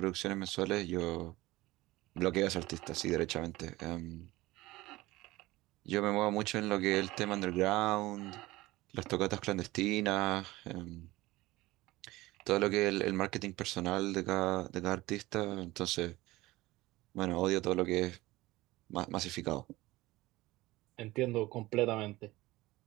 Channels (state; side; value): quieter; left; 19.0 dB